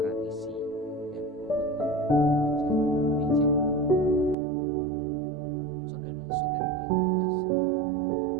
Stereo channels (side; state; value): left; drops out; at 4.4 s